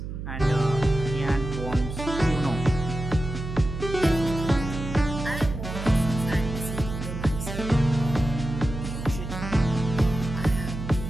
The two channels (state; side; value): noise; right; hum, 7 dB below the sound